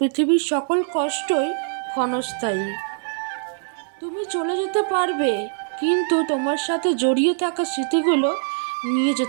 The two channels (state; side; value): silent; left; 64 dB below the other